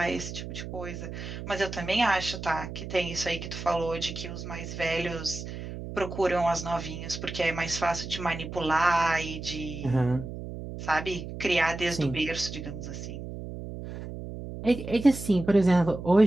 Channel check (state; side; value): noise; right; hum, 9 dB below the sound